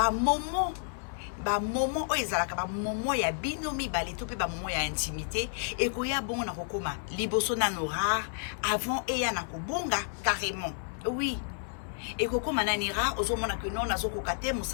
moment oyo ezalaka bamomo ya bino mibale to mpe bamomo ya intimité ekoya bongo na kokoma liboso nano rare avant eya na kobonga carrément oui ekokoma nani rare ozomona ke non nazokoka te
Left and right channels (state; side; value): silent; right; 57 dB below the other